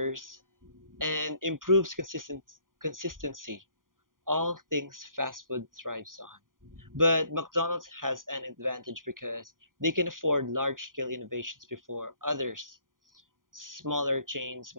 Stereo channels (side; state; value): left; late; 0.90 ms